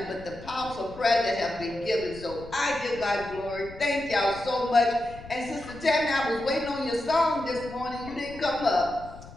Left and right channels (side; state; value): left; noise; rumble, 17 dB below the sound